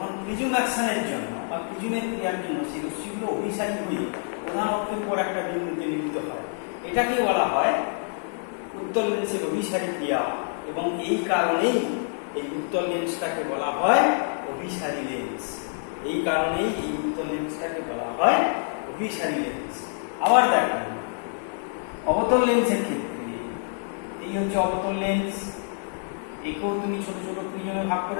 প্রিজম অ্যাকশনের জন্য বা প্রিজমের ক্রিয়ার জন্য সেই রশ্মিগুলো অভিসারী হয়ে প্রধান অক্ষের উপর একটা বিন্দুতে মিলিত হয়। এটাকে বলা হয় উত্তল লেন্সের অভিসারী ক্রিয়া। এবং এই কারণেই এই উত্তল লেন্সটাকে বলা হয় অভিসারী লেন্স। এই কারণেই এই উত্তল লেন্সটাকে বলা হয় অভিসারী লেন্স। আবার দেখো, অবতল লেন্সের ক্ষেত্রে এই হচ্ছে অবতল লেন্স, একেও তুমি ছোট ছোট প্রিজমে ভাগ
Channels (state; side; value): silent; right; 60 dB below the other